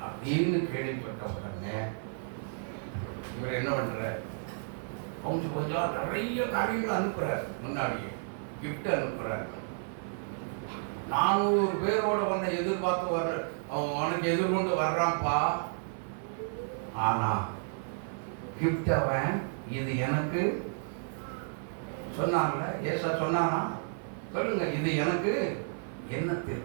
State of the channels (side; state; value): left; silent; 57 dB below the other